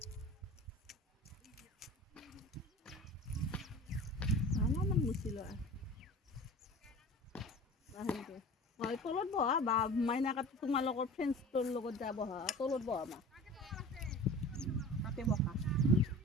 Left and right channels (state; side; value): normal; both; correlation 0.38